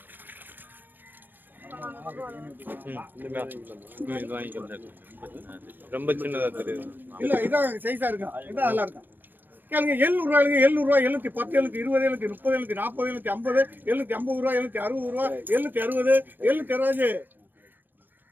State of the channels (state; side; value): late; left; 0.090 ms